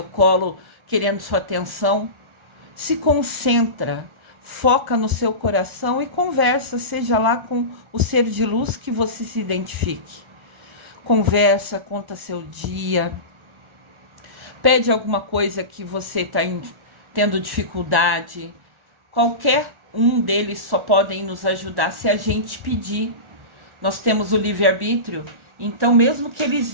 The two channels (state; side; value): late; left; 1.4 ms